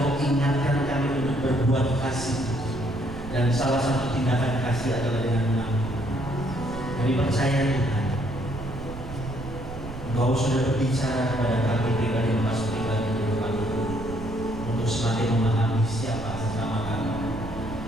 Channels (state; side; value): noise; right; rumble, 11 dB below the sound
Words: ingatkan kami untuk berbuat kasih. Dan salah satu tindakan kasih adalah dengan mengampuni. Kami percaya Tuhan, Engkau sudah berbicara kepada kami pribadi lepas pribadi untuk semakin memahami siapa sesama kami